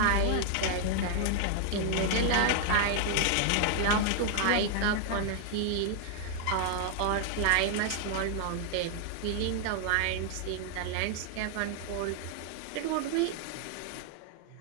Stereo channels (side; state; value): both; different; correlation 0.00